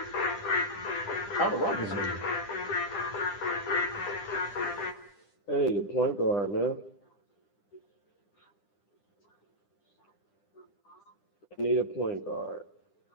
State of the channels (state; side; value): late; right; 9.9 ms